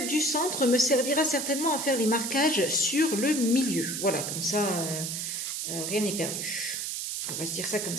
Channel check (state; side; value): noise; right; hiss, 3 dB below the sound